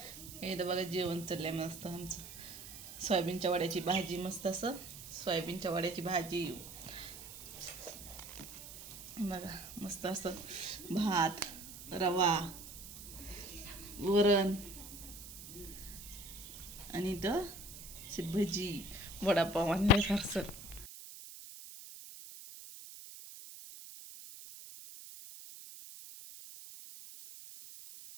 हे तर बघा जेवण चाललंय मस्त आमचं. सोयाबीनच्या वड्याची भाजी, मस्त असं सोयाबीनच्या वड्याची भाजी. बघा मस्त असं भात, रवा, वरण आणि इथं भजी, वडापाव आणले फारसं.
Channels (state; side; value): noise; right; hiss, 13 dB below the sound